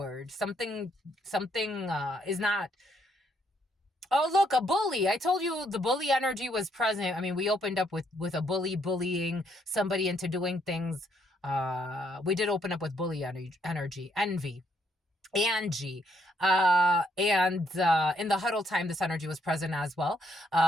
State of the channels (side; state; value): both; normal; correlation 0.72